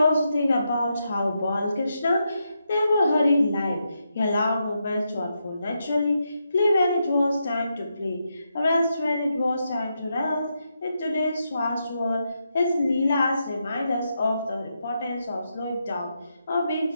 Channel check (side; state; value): both; inverted; correlation -0.83